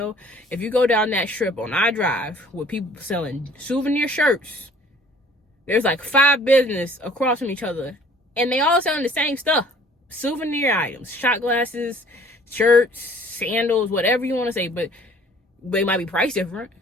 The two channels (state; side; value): normal; both; correlation 0.54